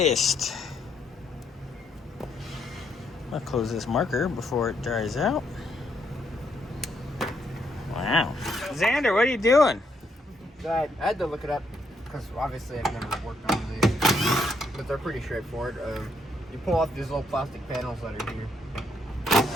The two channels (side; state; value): both; normal; correlation 0.74